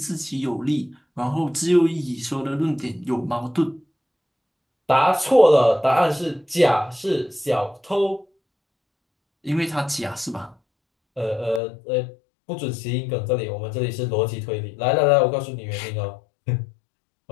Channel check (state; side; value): drops out; right; at 11.6 s